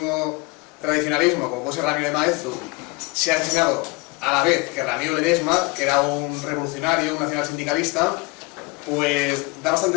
tradicionalismo, como puede ser Ramiro de Maeztu, se ha asesinado a la vez que Ramiro Ledesma, que era un revolucionario, un nacional sindicalista, pues da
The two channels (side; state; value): right; quieter; 26.2 dB